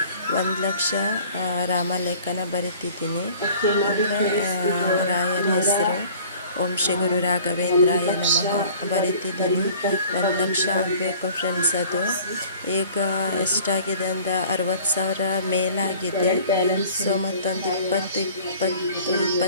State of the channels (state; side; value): inverted; both; correlation -0.49